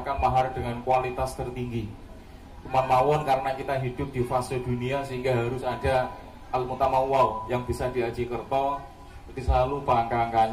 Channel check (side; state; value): both; identical; correlation 1.00